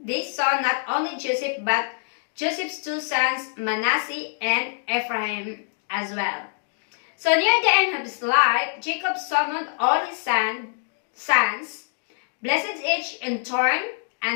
saw not only Joseph but Joseph's two sons, Manasseh and Ephraim, as well. So near the end of his life, Jacob summoned all his sons, blessed each in turn,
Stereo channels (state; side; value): silent; right; digital silence